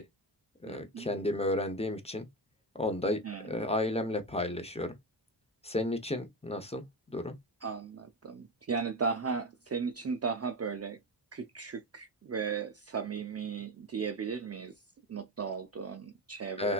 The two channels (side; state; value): both; normal; correlation 0.18